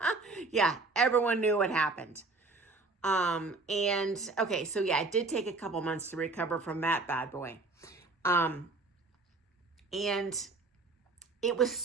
Yeah, everyone knew what happened. And okay, so yeah, it did take a couple months to recover from that bad boy. And it was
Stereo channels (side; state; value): left; quieter; 3.5 dB